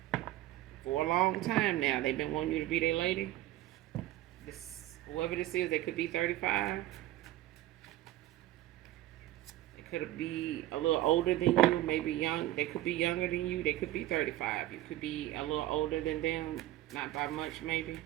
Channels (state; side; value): quieter; left; 15.1 dB